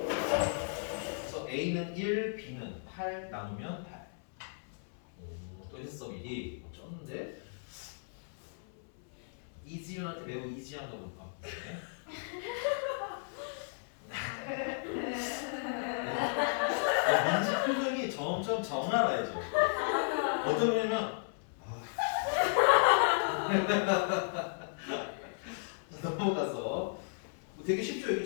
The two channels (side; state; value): right; silent; 55 dB below the other